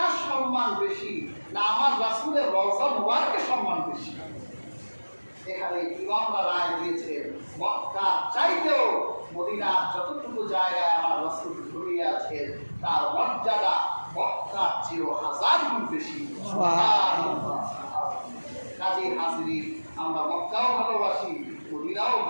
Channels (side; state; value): both; inverted; correlation -1.00